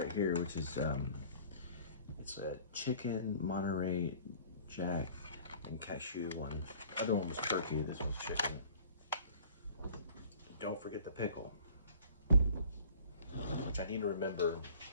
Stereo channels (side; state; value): both; inverted; correlation -0.49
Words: here, which is it's a chicken Monterey Jack and cashew one. The other one was turkey. This one's chicken. Don't forget the pickle, which I need to remember